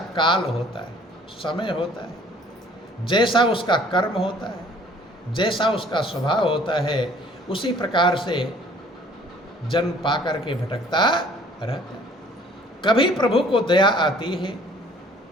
काल होता है, समय होता है, जैसा उसका कर्म होता है, जैसा उसका स्वभाव होता है, उसी प्रकार से जन्म पाकर के भटकता रहता है। कभी प्रभु को दया आती है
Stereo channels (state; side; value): normal; both; correlation 0.56